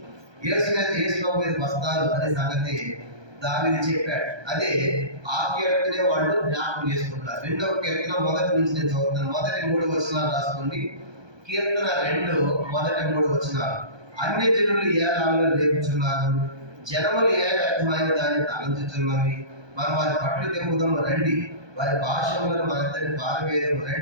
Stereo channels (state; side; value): late; left; 1.2 ms